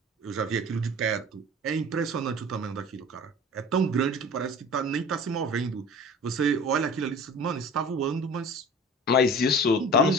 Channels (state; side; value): normal; both; correlation 0.40